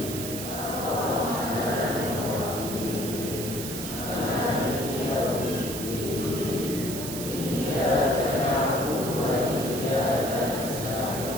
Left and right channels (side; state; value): right; noise; hiss, 7 dB below the sound